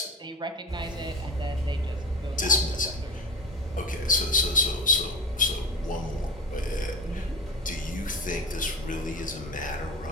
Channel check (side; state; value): both; normal; correlation 0.25